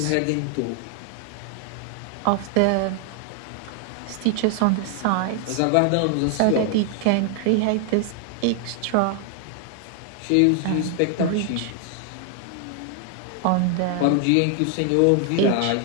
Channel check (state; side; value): different; both; correlation 0.00